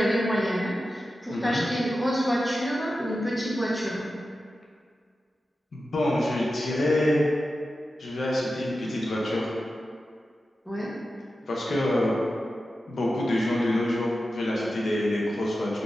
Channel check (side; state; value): both; normal; correlation 0.92